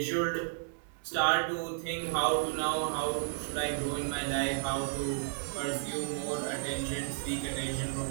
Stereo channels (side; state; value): left; silent; digital silence